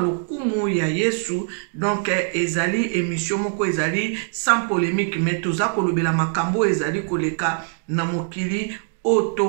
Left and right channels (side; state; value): left; silent; 64 dB below the other